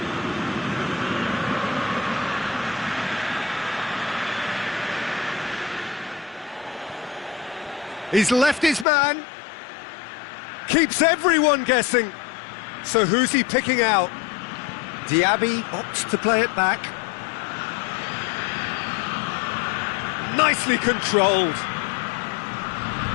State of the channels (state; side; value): drops out; right; at 8.8 s